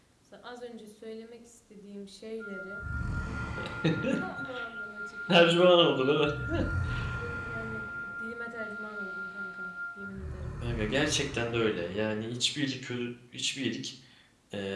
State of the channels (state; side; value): identical; both; correlation 1.00